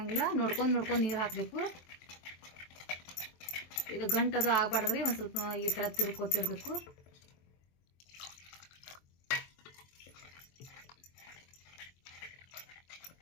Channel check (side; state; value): right; late; 23 ms